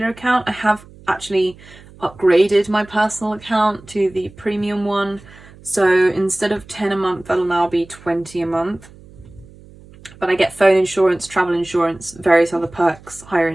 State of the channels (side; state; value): right; noise; hum, 22 dB below the sound